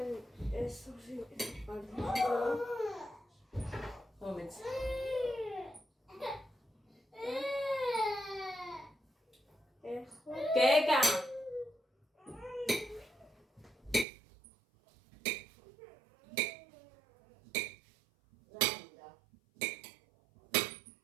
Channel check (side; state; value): left; drops out; at 14.1 s